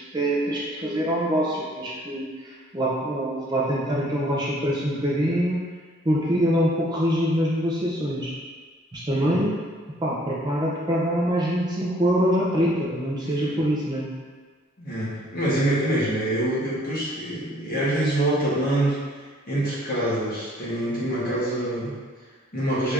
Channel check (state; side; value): normal; both; correlation 0.60